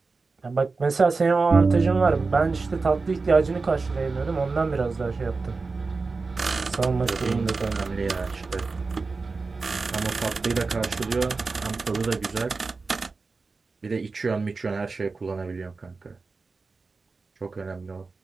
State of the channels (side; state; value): left; quieter; 4.1 dB